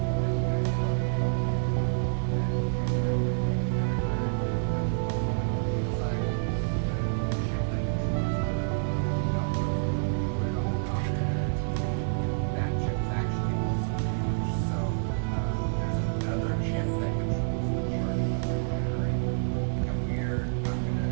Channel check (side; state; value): left; silent; 59 dB below the other